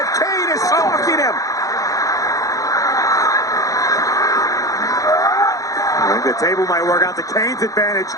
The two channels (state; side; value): late; right; 0.17 ms